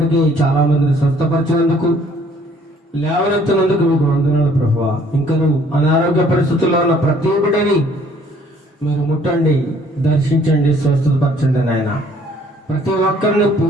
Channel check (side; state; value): both; normal; correlation 0.60